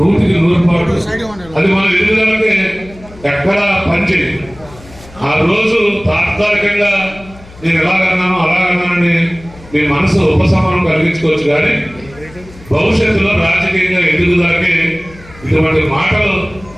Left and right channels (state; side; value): noise; left; hum, 21 dB below the sound